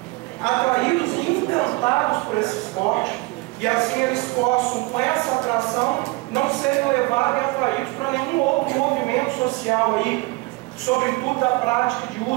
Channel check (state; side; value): quieter; left; 24.0 dB